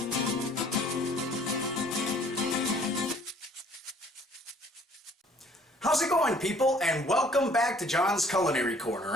How's it going, people, and welcome back to John's Culinary Corner.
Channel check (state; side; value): normal; both; correlation 0.57